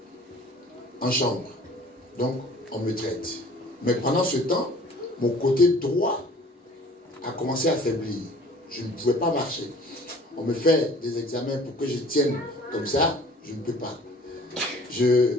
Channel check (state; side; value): normal; both; correlation 0.49